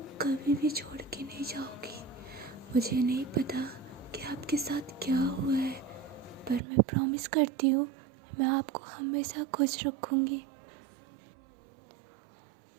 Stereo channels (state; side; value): drops out; left; at 6.6 s